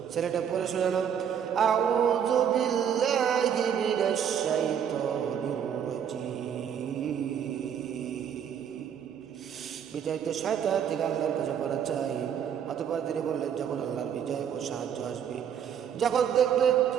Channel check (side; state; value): left; quieter; 8.4 dB